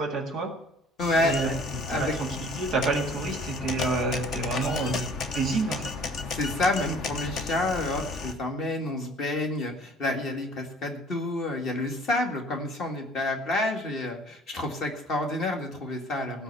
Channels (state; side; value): normal; both; correlation 0.52